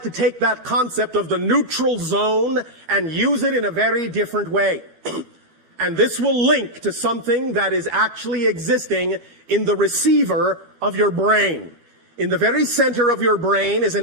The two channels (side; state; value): left; late; 12 ms